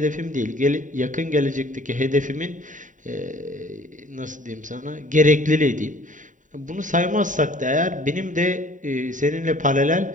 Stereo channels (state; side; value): late; left; 0.37 ms